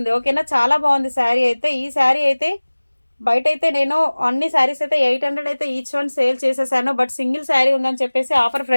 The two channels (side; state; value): both; inverted; correlation -1.00